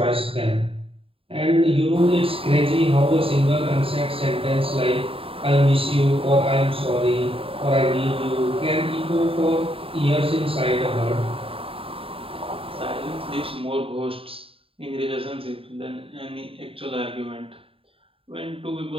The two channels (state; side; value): late; left; 0.27 ms